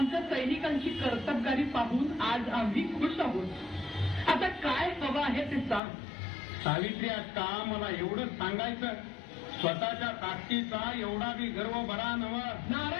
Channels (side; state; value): right; drops out; at 5.8 s